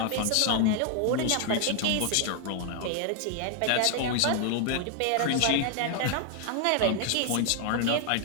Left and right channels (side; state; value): both; different; correlation 0.00